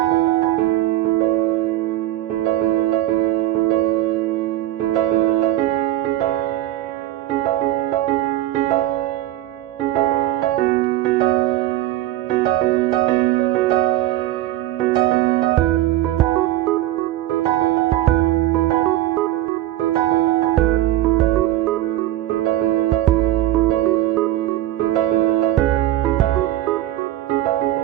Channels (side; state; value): left; quieter; 14.5 dB